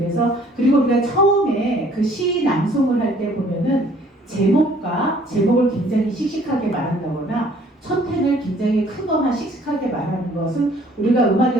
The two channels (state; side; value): normal; both; correlation 0.58